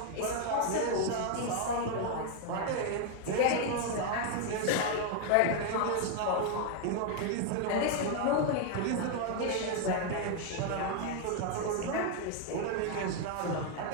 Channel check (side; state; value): both; different; correlation 0.00